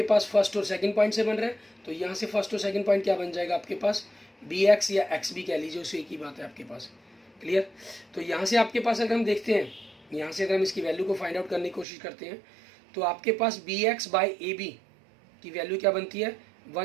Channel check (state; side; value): drops out; left; at 11.9 s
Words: पास फर्स्ट और सेकंड पॉइंट से बन रहा है, तो यहाँ से फर्स्ट और सेकंड पॉइंट क्या बन जाएगा आपके पास, बी एक्स या एक्स बी कह लीजिए, उसे एक ही बात है आपके पास। क्लियर, तो यहाँ से आपके पास अगर हम देखते हैं, यहाँ से अगर हम इसकी वैल्यू को फाइंड आउट करने की कोशिश करते हैं, तो आपके पास B X by A B की वैल्यू क्या बनती है,